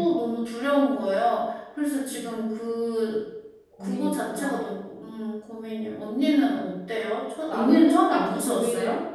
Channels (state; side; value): identical; both; correlation 1.00